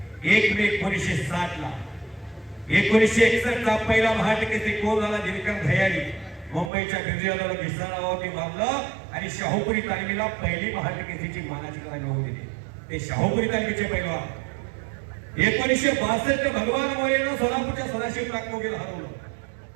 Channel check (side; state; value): left; drops out; at 6.7 s